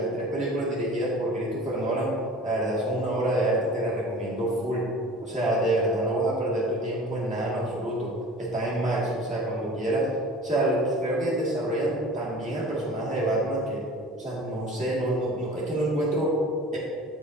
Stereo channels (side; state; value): both; normal; correlation 0.41